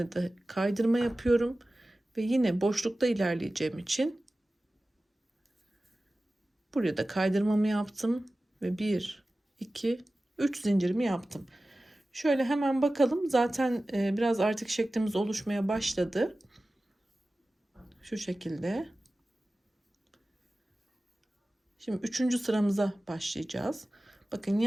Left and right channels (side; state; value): both; normal; correlation 0.96